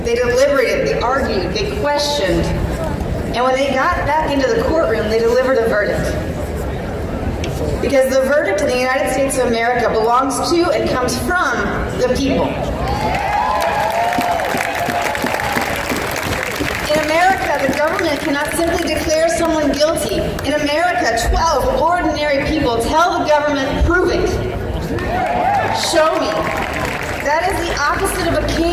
They deliberated, they argued, they questioned. And when they got back into the courtroom, they delivered a verdict. Because the verdict in the United States of America belongs to and comes from the people. In America, the government cannot simply declare someone guilty. In America, 12 ordinary people tell the government, prove it. Show me. That is the opposite of a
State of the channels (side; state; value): both; identical; correlation 1.00